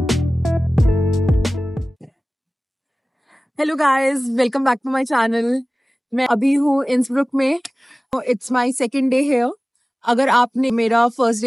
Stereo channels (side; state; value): both; normal; correlation 0.98